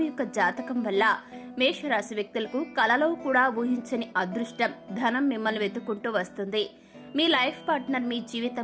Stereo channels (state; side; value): identical; both; correlation 1.00